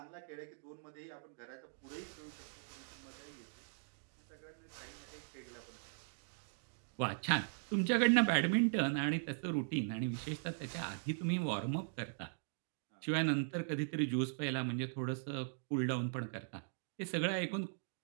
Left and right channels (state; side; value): silent; left; digital silence